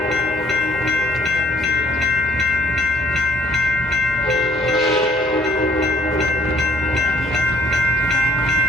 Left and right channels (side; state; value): both; normal; correlation 0.62